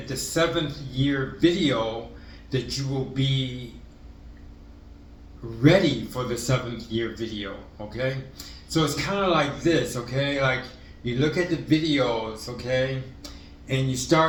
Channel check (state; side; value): identical; both; correlation 1.00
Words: the 7th year video that you will be ready for the 7th year video, okay? So it's kind of like this, okay? Like, you look at the videos, okay? And you